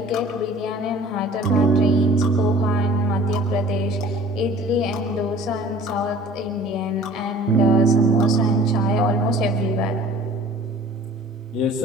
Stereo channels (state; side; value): normal; both; correlation 0.48